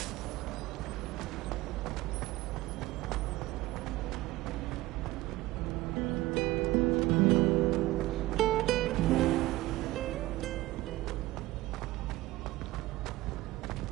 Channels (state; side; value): quieter; left; 18.1 dB